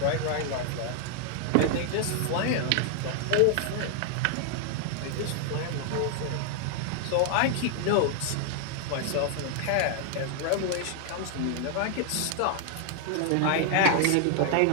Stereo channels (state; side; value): different; both; correlation 0.00